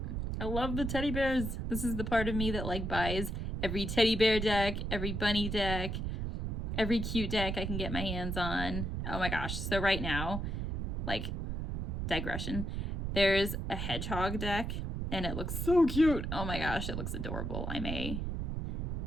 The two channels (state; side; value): noise; right; rumble, 2 dB below the sound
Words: I love the teddy bears. This is the part of me that like buys every teddy bear deck, every bunny deck, every cute deck I can get my hands on. Oh my gosh. So right now, like, digression, there's a hedgehog deck and it looks so cute. Oh my gosh, it looks adorable. I